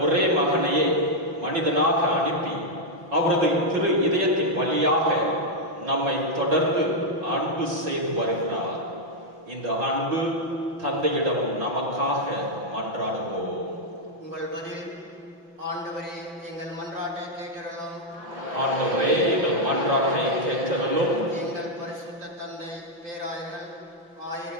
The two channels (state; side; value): late; left; 5.9 ms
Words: ஒரே மகனையே மனிதனாக அனுப்பி அவரது திரு இதயத்தின் வழியாக நம்மை தொடர்ந்து அன்பு செய்து வருகிறார். இந்த அன்பு தந்தையிடம் நமக்காக மன்றாடுவோம். உங்கள் பதில், ஆண்டவரே எங்கள் மன்றாட்டை கேட்டருளும். ஆண்டவரே எங்கள் மன்றாட்டை கேட்டருளும். எங்கள் பரிசுத்த தந்தை, பேராயர்கள்,